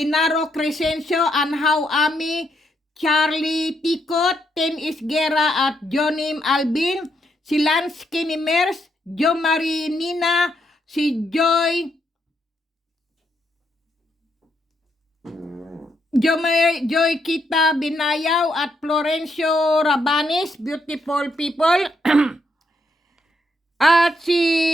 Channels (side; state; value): both; normal; correlation 0.77